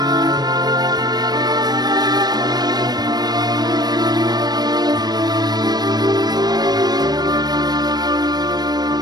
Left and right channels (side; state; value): left; late; 0.19 ms